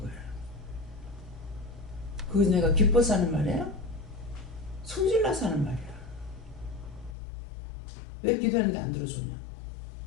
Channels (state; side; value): drops out; right; at 7.2 s